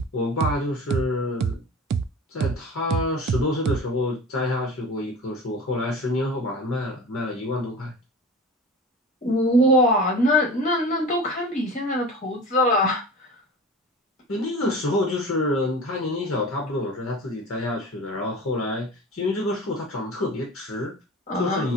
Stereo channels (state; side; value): normal; both; correlation 0.35